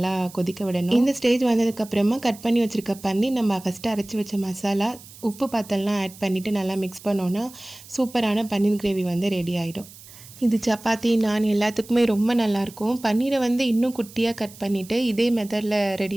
கொதிக்க விடணும். இந்த ஸ்டேஜ் வந்ததுக்கப்புறமா கட் பண்ணி வச்சுருக்க பண்ணி நம்ம ஃபஸ்ட்டு அரைச்சி வச்ச மசாலா, உப்பு பாத்தெல்லாம் ஆட் பண்ணிவிட்டு நல்லா மிக்ஸ் பண்ணோன்னா சூப்பரான பன்னீர் கிரேவி வந்து ரெடி ஆகிடும். இது சப்பாத்தி, நான் எல்லாத்துக்குமே ரொம்ப நல்லாயிருக்கும். பன்னீரை வந்து இன்னும் குட்டியாக கட் பண்ணிவிட்டு இதே மெத்தடில்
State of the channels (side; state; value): right; noise; hiss, 19 dB below the sound